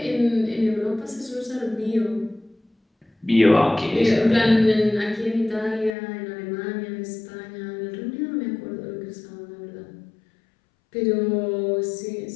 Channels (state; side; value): drops out; right; at 5.9 s